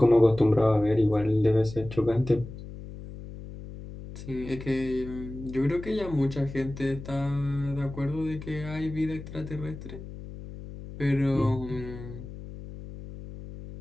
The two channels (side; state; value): left; noise; hum, 12 dB below the sound